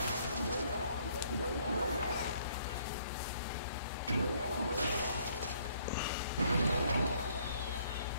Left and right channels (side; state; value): both; inverted; correlation -0.64